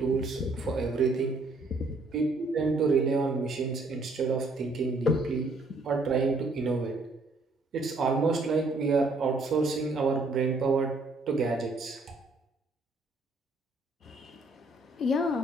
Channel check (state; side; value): quieter; left; 3.0 dB